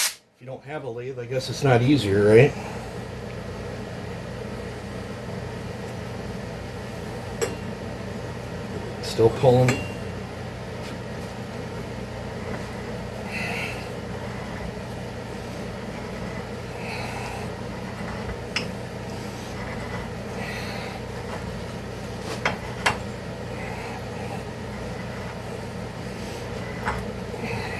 you don't have a lathe, I guess it's not easier, right? Still pulling.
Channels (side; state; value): both; identical; correlation 1.00